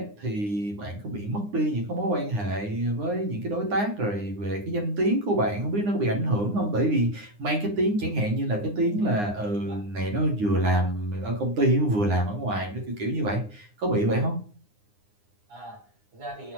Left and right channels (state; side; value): late; left; 9.7 ms